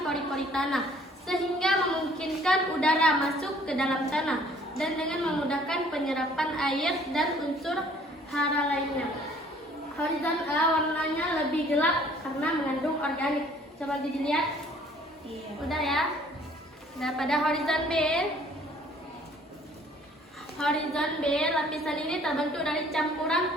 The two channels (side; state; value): both; normal; correlation 0.57